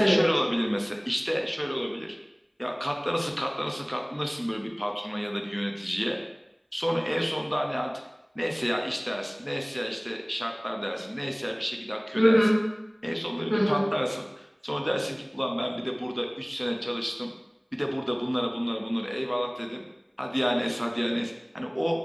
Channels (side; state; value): both; identical; correlation 1.00